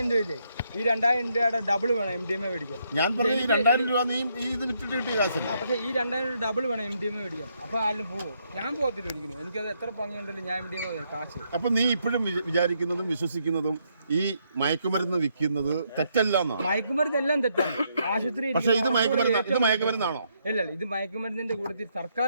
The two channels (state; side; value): inverted; both; correlation -0.75